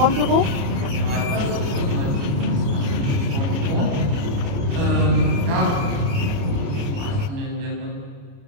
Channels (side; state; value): left; late; 29 ms